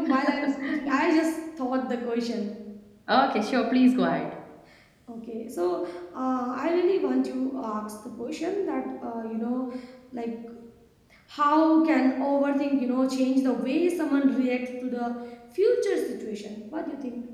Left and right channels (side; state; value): both; identical; correlation 1.00